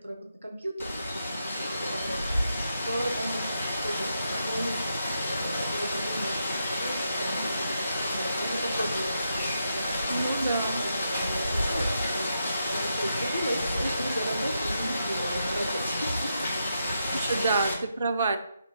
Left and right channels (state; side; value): inverted; both; correlation -0.82